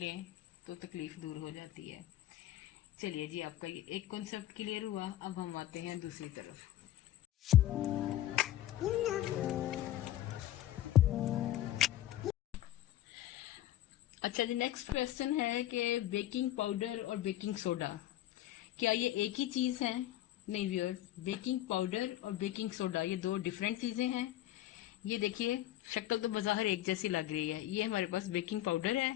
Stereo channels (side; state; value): right; quieter; 13.6 dB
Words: तो तकलीफ दूर हो जाती है। चलिए जी, आपका ये एक कॉन्सेप्ट क्लियर हुआ। अब हम आते हैं दूसरी तरफ। अच्छा जी, नेक्स्ट क्वेश्चन है कि बेकिंग पाउडर और बेकिंग सोडा क्या ये एक ही चीज है? नहीं व्यूअर्स, बेकिंग पाउडर और बेकिंग सोडा ये दो डिफरेंट चीजें हैं। ये देखिए, शक्ल तो बाहर एक जैसी लग रही है। ये हमारे पास बेकिंग पाउडर